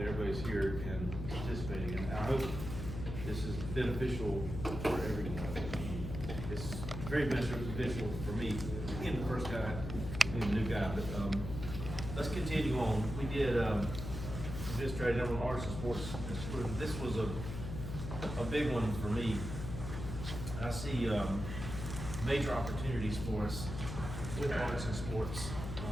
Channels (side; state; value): left; noise; hum, 6 dB below the sound